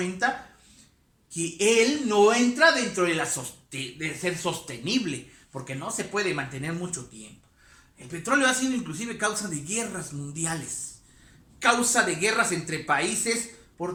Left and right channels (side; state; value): both; identical; correlation 1.00